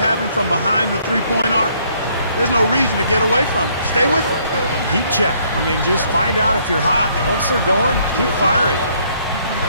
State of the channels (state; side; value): inverted; both; correlation -0.66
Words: from behind the three-point arc, there's no reason to get away from it. Stay with it. Heat check. I mean, just find out if you're hot. Once they're going, keep firing.